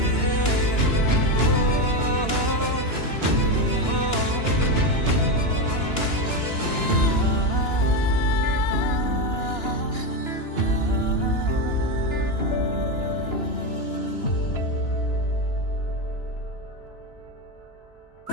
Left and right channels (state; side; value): late; right; 2.9 ms